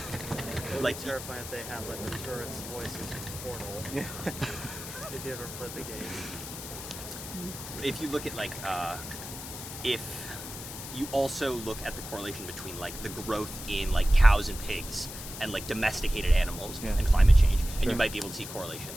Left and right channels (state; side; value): noise; left; hiss, 10 dB below the sound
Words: would Like, be terrifying if they had like the turret's voices in Portal. Yeah. If you ever played the game. if you look at like if you also look at the correlation between like the growth in like cows and pigs and like domesticated animals Yeah. and climate change, and Sure. you might be able to see correlation